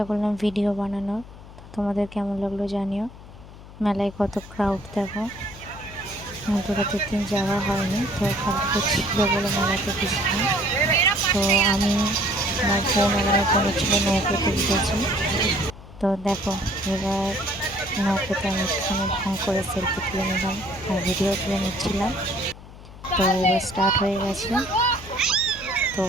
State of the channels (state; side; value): noise; left; hum, 17 dB below the sound